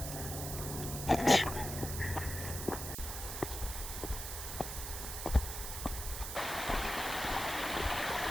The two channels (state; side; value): noise; right; hiss, 6 dB below the sound